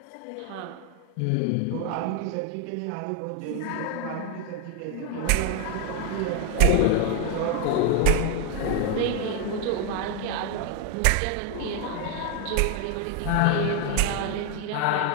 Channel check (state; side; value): different; both; correlation 0.00